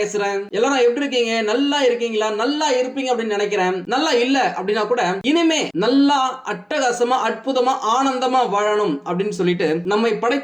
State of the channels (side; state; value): both; identical; correlation 1.00